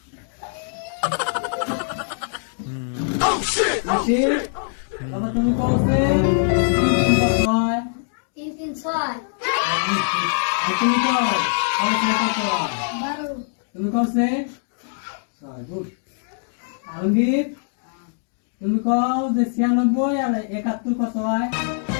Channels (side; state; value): right; silent; digital silence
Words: আশির বাবা তুমি কসে 3 কত হয় 3 আর তুমি কও কসে কত হয় 12 তুমি কসে গুড আলমগীর তুমি কও যে 96 আর 71 কত হয়